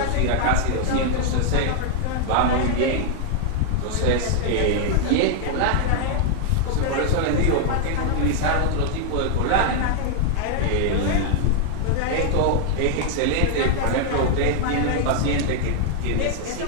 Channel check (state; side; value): different; both; correlation 0.00